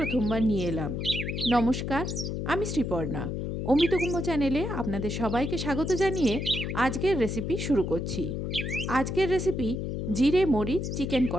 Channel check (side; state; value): left; noise; hum, 3 dB below the sound